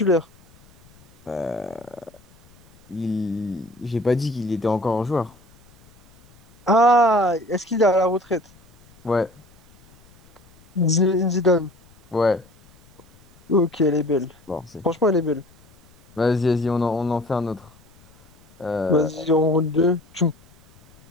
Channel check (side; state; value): left; noise; rumble, 29 dB below the sound